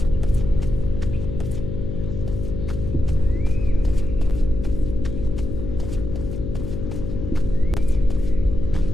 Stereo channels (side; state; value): left; noise; hum, 5 dB below the sound